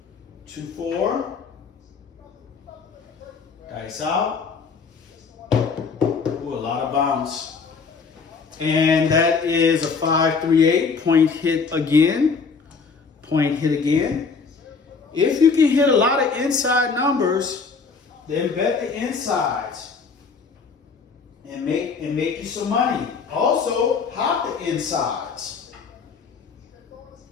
2, 4. Dice out. Ooh, a lot of bounce. And that is a 5, 3, 8. Point hit again. Point hit again. If you can hit a lot of inside numbers, then bet the insides and make you some money. Also, hop the insides.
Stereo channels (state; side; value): quieter; right; 5.1 dB